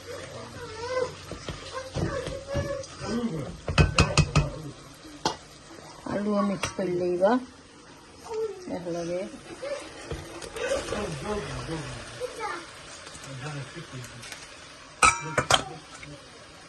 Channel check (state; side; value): identical; both; correlation 1.00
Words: আলু মিক্স করে লইবা একলগে